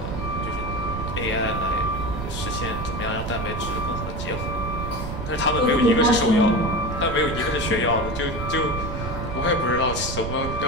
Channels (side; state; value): right; noise; rumble, 5 dB below the sound